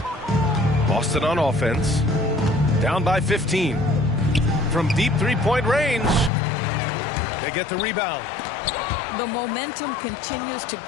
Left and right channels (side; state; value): right; drops out; at 6.3 s